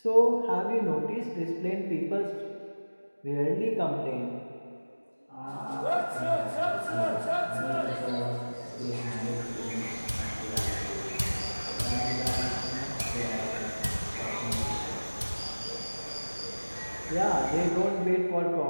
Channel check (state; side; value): inverted; both; correlation -1.00